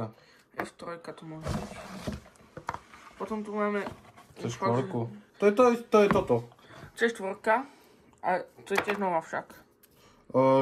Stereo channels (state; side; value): identical; both; correlation 1.00